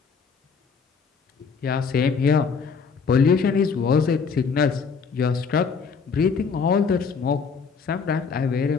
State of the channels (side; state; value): right; quieter; 5.6 dB